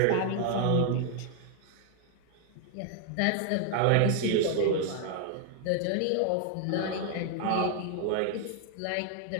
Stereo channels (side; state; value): both; different; correlation 0.00